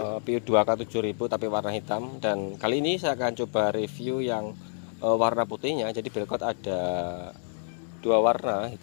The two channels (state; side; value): silent; right; digital silence